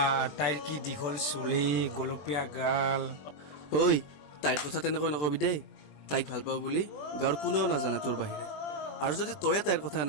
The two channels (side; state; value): right; late; 20 ms